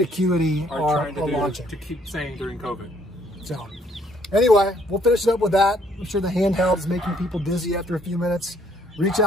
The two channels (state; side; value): normal; both; correlation 0.65